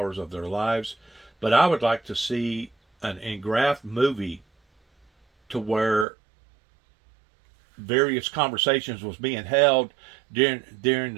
of their lives. But I would like to see an engraphed movie to where various conversations was being held during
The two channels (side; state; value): left; drops out; at 6.1 s